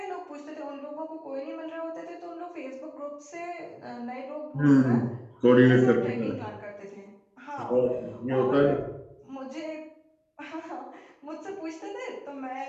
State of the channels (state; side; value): identical; both; correlation 1.00